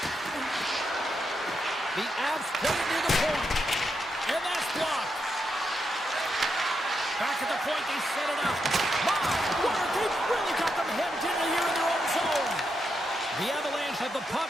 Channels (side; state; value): both; normal; correlation 0.83